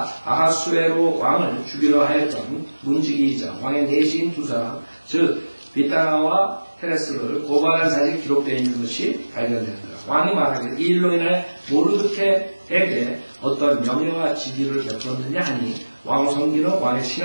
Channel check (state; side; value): inverted; both; correlation -1.00